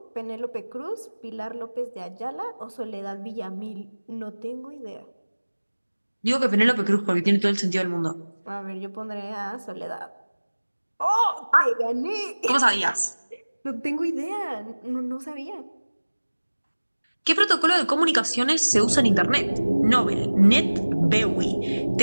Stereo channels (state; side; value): inverted; both; correlation -1.00